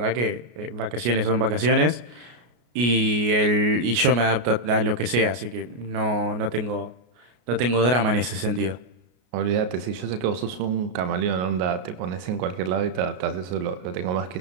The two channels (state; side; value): late; left; 33 ms